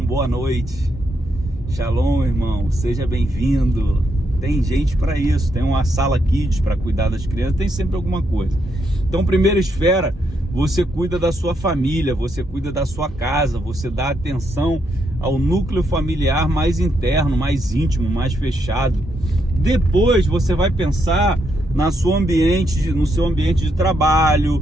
boa noite. Shalom, irmão, seja bem-vindo. Tem gente para isso, tem uma sala kids para cuidar das crianças, tem sempre alguma coisa. Então, primeira esfera, você cuida da sua família, você cuida da sua casa, você dá atenção ao núcleo familiar mais interno, mais íntimo, mais fechado. Depois você vai pensar no seu ambiente de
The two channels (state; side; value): normal; both; correlation 0.78